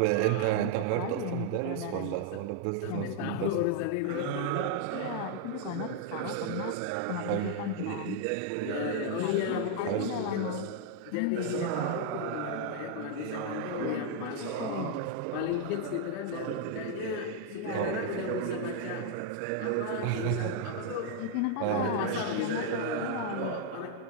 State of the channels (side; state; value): both; different; correlation 0.00